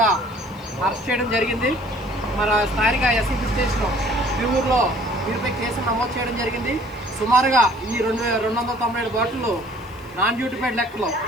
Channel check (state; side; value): noise; right; hiss, 28 dB below the sound